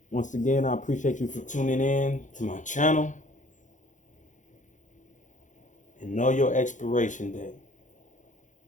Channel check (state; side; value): late; right; 0.36 ms